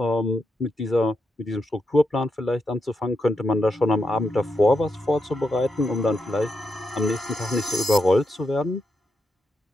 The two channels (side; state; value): both; normal; correlation 0.84